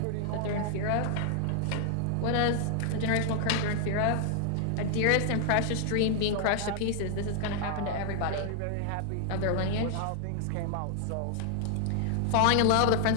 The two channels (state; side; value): different; both; correlation 0.00